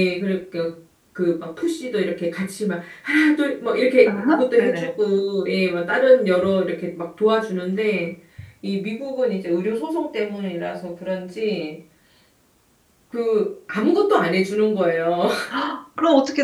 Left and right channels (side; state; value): both; identical; correlation 1.00